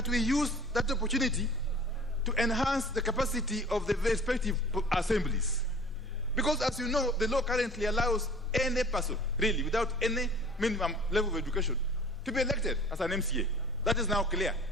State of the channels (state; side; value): normal; both; correlation 0.47